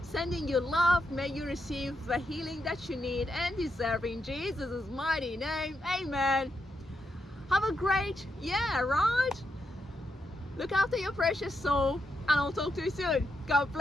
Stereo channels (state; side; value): normal; both; correlation 0.83